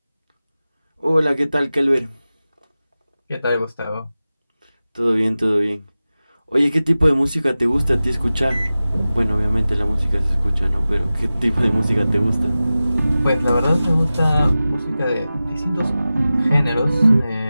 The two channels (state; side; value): inverted; both; correlation -0.96